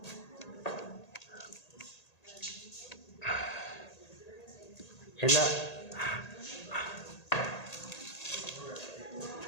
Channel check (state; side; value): late; right; 1.8 ms